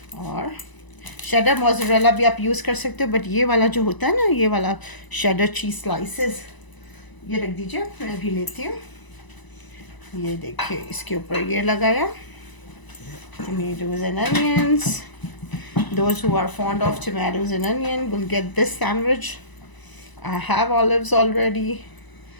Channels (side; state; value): right; late; 1.0 ms